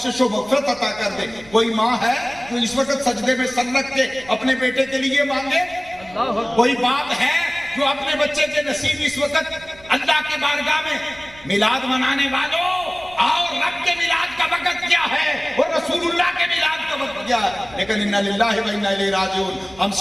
و مغفرت عطا کر دے۔ کوئی ماں ہے جو اس وقت سجدے میں سر رکھ کے اپنے بیٹے کے لیے مانگے؟ کوئی باپ ہے جو اپنے بچے کے نصیب اس وقت اللہ کے بارگاہ میں؟ میلاد منانے والوں اور رب کے میلاد کا وقت کیا ہے اور رسول اللہ کے میلاد کا وقت کیا ہے، لیکن انا للہ و انا الیہ راجعون، ہم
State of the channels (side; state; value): right; noise; rumble, 23 dB below the sound